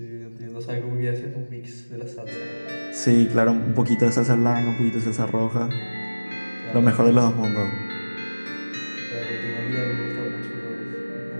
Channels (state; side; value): inverted; both; correlation -1.00